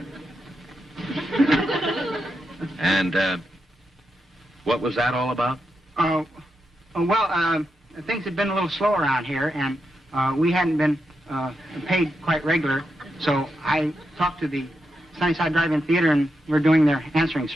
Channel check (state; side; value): normal; both; correlation 0.85